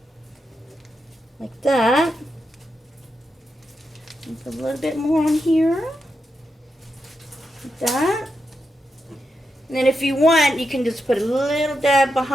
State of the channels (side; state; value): both; normal; correlation 0.86